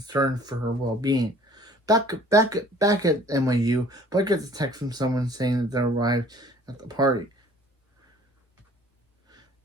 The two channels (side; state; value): both; normal; correlation 0.53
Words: for her well-being. Back at NYU, Blair gets a text from someone saying that they arrived at the party.